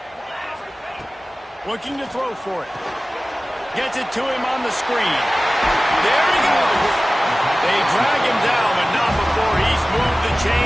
Looking to throw for it. Gets it to him on the screen. There he goes. They drag him down, but not before he's moved the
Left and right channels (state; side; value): normal; both; correlation 0.97